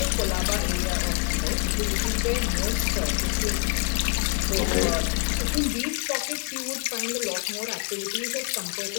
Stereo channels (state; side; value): quieter; right; 33.4 dB